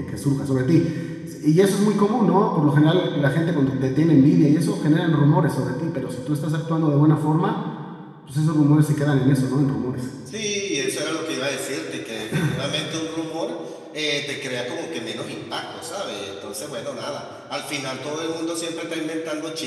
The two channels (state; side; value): identical; both; correlation 1.00